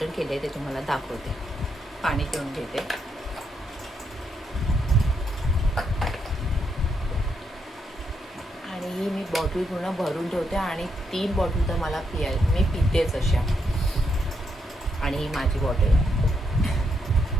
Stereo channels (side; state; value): both; normal; correlation 0.79